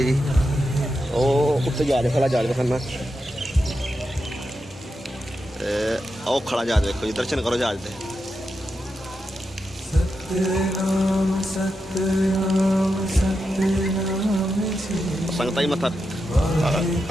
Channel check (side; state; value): both; normal; correlation 0.87